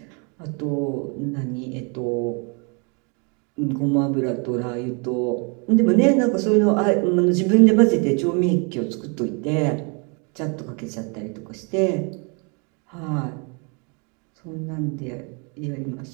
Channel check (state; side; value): quieter; left; 34.5 dB